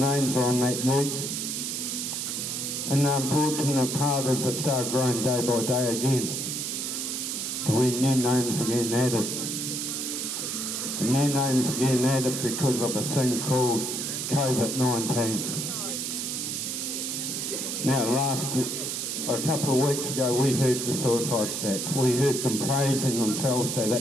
on that ute. And the unfortunate part is it started growing day by day again. When new names are getting added. And new names are getting added because of a thing called COVID-19. Now a couple of weeks ago we heard the suicide stats. We heard them praising themselves that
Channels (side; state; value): right; noise; hiss, 3 dB below the sound